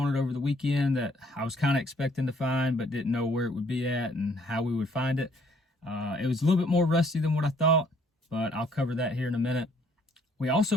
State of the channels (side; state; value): both; normal; correlation 0.63